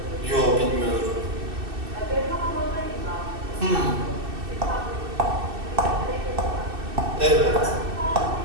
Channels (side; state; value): left; late; 2.6 ms